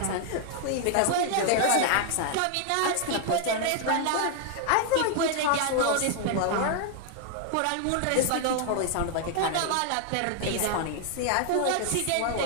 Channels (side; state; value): both; different; correlation 0.00